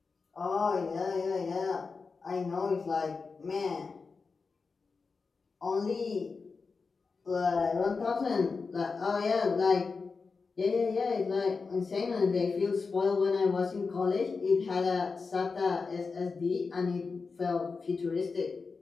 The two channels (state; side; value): quieter; right; 4.6 dB